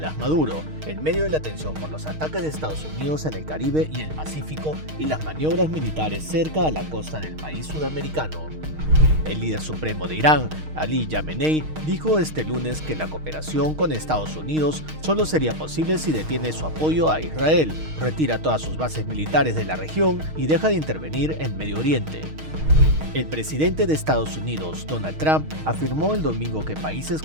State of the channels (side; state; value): left; late; 6.4 ms